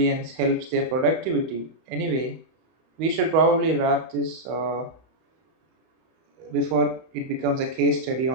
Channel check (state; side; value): late; left; 31 ms